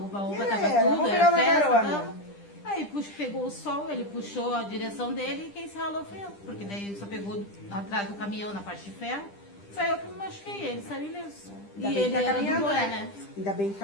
estava tudo, vamos era pegar uma festa. carona. Então, aí pegou o sol, ele puxou a direção dele e quem se ralou foi eu. Porque daí ele só pegou atrás do caminhão na parte de ferro. Foi eu que me machuquei, ele saiu ileso. Ainda E bem que ele tá era do caminhando, Boé, né? Ainda bem que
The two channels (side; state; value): right; late; 10 ms